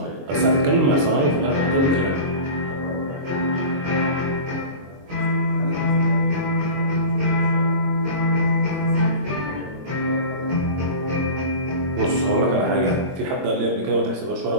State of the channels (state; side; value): late; left; 22 ms